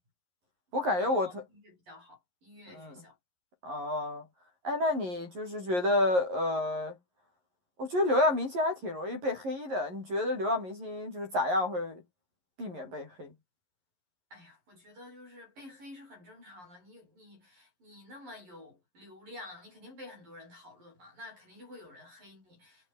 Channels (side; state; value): left; late; 11 ms